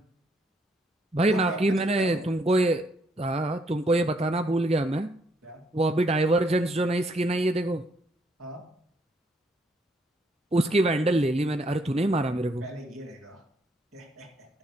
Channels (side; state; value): both; normal; correlation 0.71